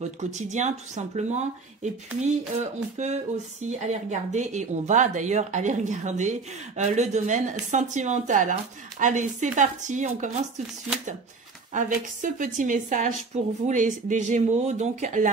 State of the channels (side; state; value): left; quieter; 4.2 dB